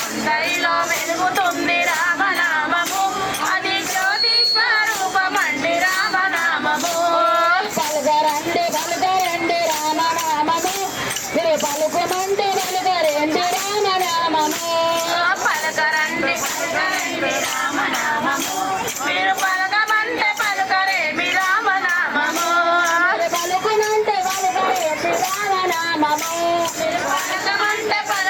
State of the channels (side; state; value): both; identical; correlation 1.00